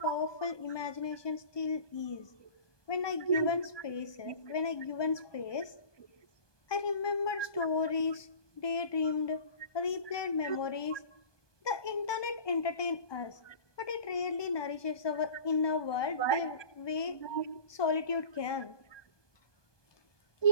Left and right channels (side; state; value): right; late; 1.2 ms